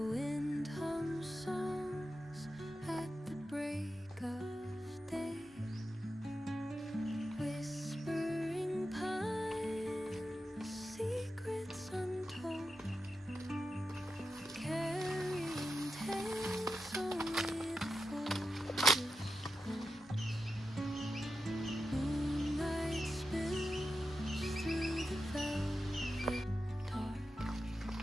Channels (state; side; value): normal; both; correlation 0.90